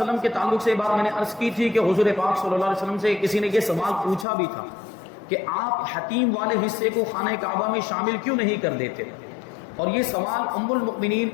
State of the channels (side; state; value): right; drops out; at 4.2 s